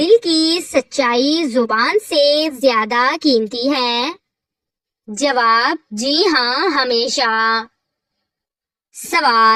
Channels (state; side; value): identical; both; correlation 1.00